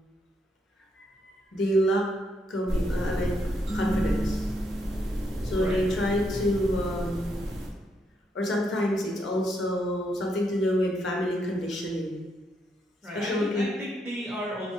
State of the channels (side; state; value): both; normal; correlation 0.77